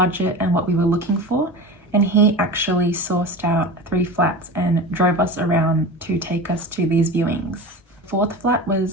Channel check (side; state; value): both; normal; correlation 0.31